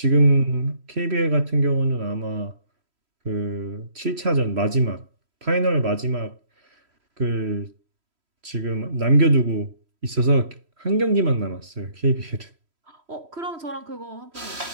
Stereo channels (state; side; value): late; left; 3.1 ms